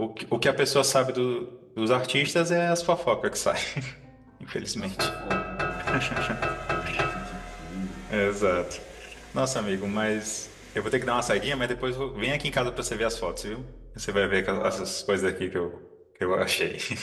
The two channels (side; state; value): both; identical; correlation 1.00